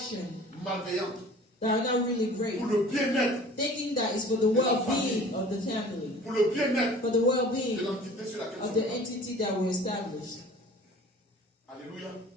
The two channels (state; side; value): normal; both; correlation 0.46